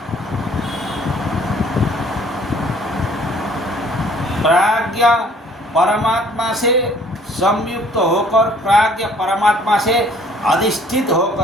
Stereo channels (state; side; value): normal; both; correlation 0.57